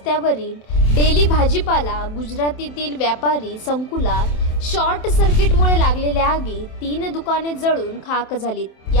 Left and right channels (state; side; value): late; right; 27 ms